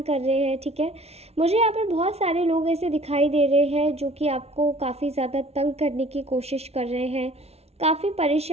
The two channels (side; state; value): left; late; 0.30 ms